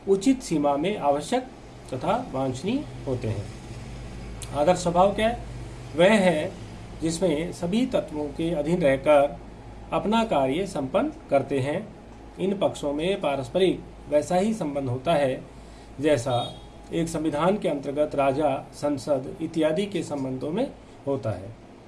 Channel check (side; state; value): both; identical; correlation 1.00